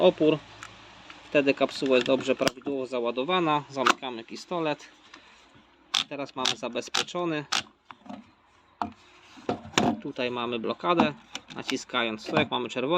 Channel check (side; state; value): both; identical; correlation 1.00